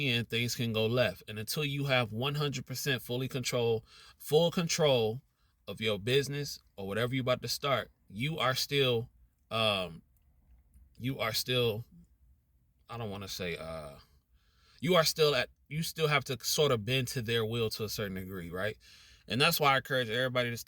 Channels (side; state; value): both; identical; correlation 1.00